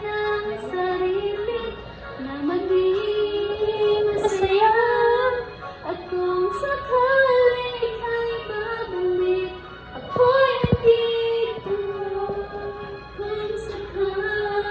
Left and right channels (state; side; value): identical; both; correlation 1.00